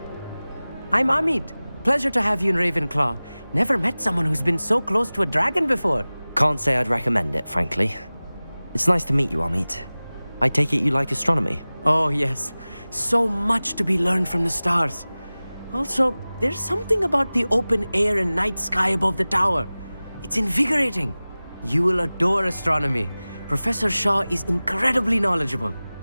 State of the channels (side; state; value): both; inverted; correlation -0.98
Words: I'm Amit. Pleasure to have you in Ravenclaw. Never met someone who's been so close to a dragon before. Can't say I'd recommend it, frankly. It's nice to meet you, Amit. I take it you like astronomy? Oh, yes. So much to be learned from the stars. Also, there's something about the open air and night sky above the tower. It's invigorating. You will adore astronomy. Professor Shaw is incredibly knowledgeable.